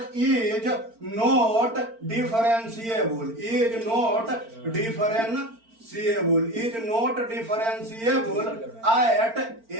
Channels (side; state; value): left; late; 4.4 ms